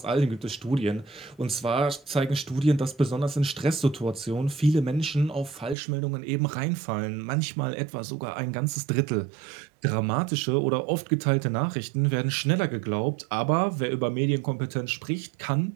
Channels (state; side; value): drops out; left; at 5.8 s